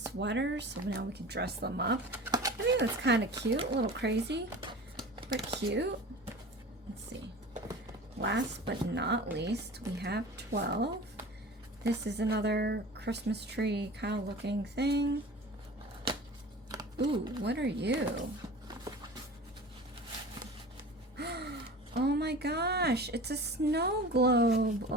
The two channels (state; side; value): normal; both; correlation 0.37